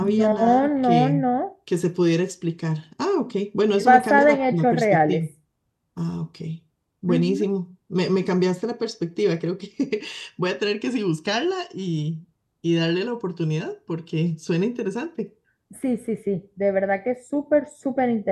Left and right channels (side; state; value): both; identical; correlation 1.00